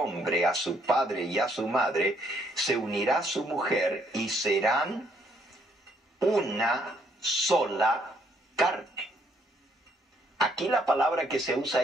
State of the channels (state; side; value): normal; both; correlation 0.69